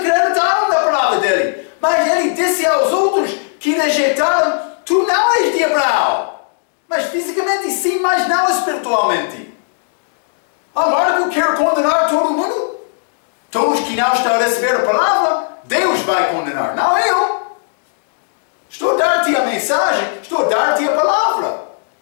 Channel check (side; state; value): right; silent; digital silence